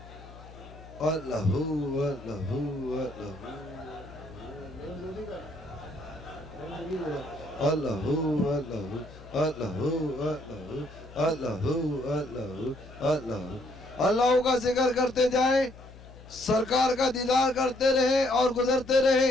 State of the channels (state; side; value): noise; left; hum, 19 dB below the sound